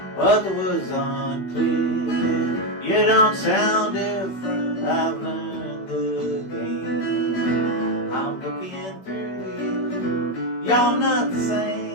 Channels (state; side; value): late; right; 16 ms